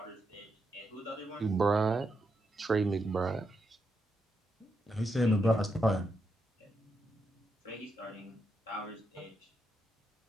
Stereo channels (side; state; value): both; normal; correlation 0.83